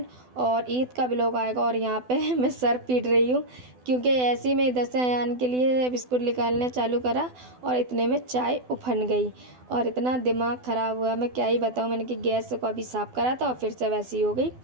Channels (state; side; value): late; left; 12 ms